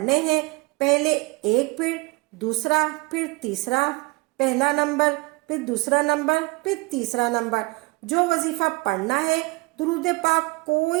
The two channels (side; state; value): left; quieter; 25.5 dB